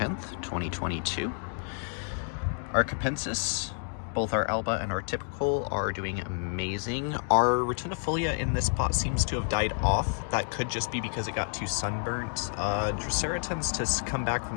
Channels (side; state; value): right; silent; 58 dB below the other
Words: 2022. Our capensis, both our alba and our typical, are doing amazing. Our rotundifolia in this pot seems to have died off. That could just be because it got too sunburnt. Drosera tends to come back from